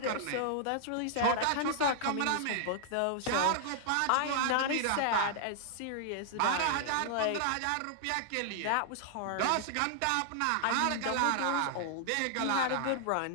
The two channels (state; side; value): different; both; correlation -0.01